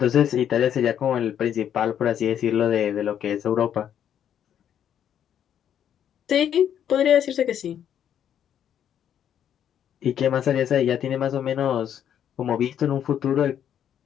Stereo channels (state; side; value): quieter; right; 9.5 dB